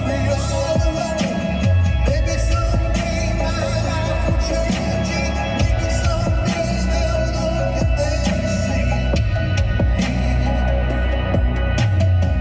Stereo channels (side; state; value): both; identical; correlation 1.00